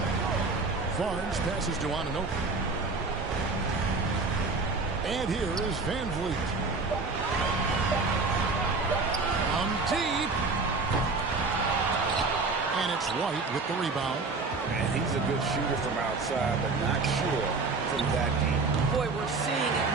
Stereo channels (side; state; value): left; quieter; 4.0 dB